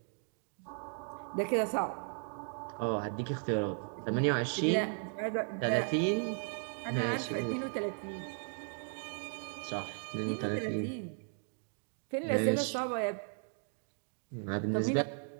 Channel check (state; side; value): silent; left; 54 dB below the other